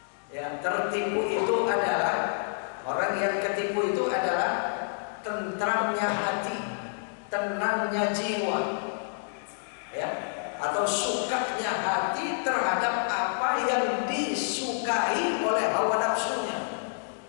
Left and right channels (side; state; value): right; silent; digital silence